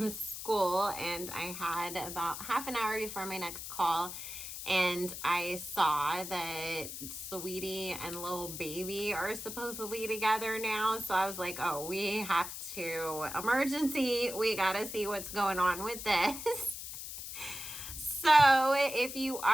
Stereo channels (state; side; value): noise; left; hiss, 8 dB below the sound